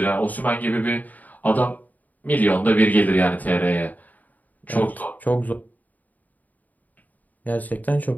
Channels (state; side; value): late; right; 0.079 ms